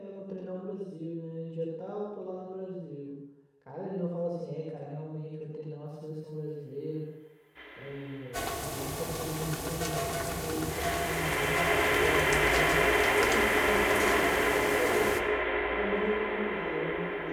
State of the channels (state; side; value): identical; both; correlation 1.00